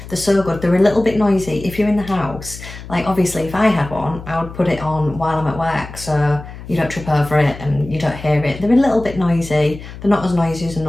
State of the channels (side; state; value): left; noise; hum, 14 dB below the sound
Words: They're so good. They're a little bit noisy if you're in the house. Like obviously if I had one, I would put it on while I'm at work so you don't trip over it and you don't hear it. They're a little bit noisy. They're not as noisy as a